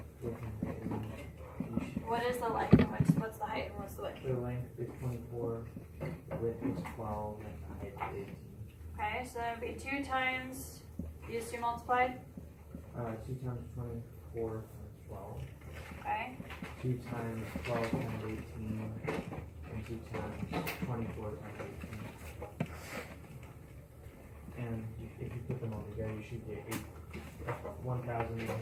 with height and then you should, What is the length, and what's the height, and what's the width? the length is 24, width is 12, and the height is 18. Okay, so that would be 2 times, these two multiplied, 2 times 24 times 12. okay, 2 times 12 times 18, and 2 times 24 times 18. And if you put them all together, you should get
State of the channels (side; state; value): both; identical; correlation 1.00